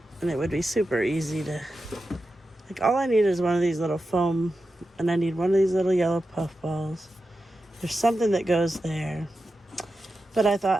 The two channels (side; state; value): both; normal; correlation 0.91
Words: And it would be super easy to, like, all I need is one of these little foam, and I need one of these little yellow puff balls. There's something that goes there. But I